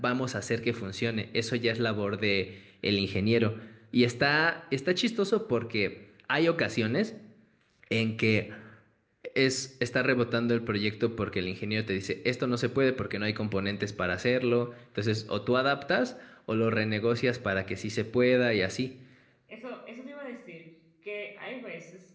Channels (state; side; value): identical; both; correlation 1.00